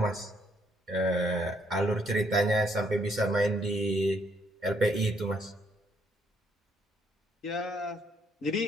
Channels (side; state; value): both; normal; correlation 0.70